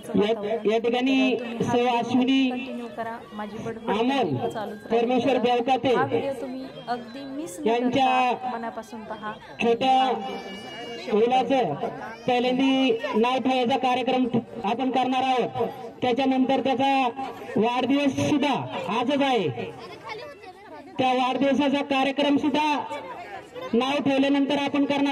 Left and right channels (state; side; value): identical; both; correlation 1.00